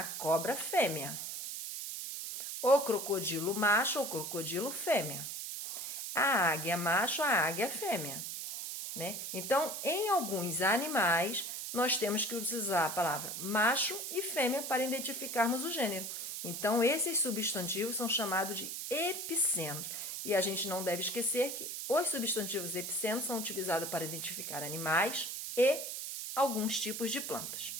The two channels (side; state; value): right; noise; hiss, 5 dB below the sound